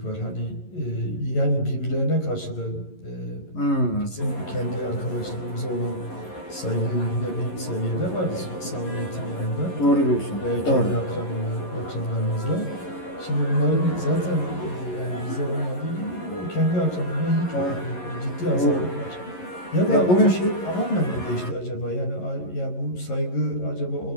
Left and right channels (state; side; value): late; right; 11 ms